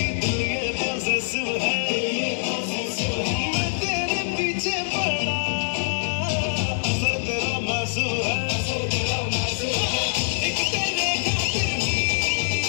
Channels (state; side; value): silent; right; digital silence